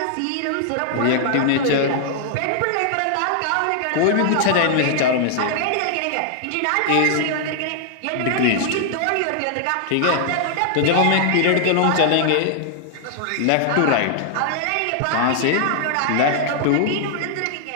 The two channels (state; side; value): different; both; correlation 0.00